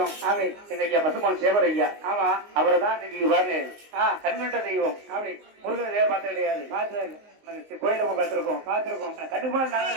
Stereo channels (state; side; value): late; left; 19 ms